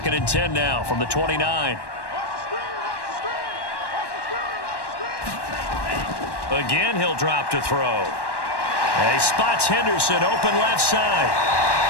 and 10 now from the 29. Again, he'll drop to throw. He spots Henderson open left side.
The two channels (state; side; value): late; right; 1.1 ms